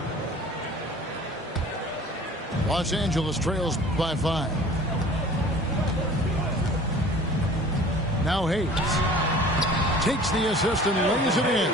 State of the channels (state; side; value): normal; both; correlation 0.46